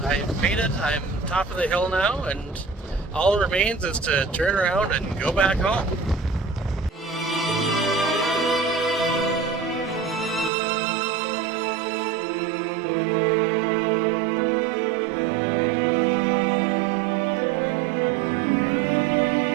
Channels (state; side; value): drops out; left; at 10.5 s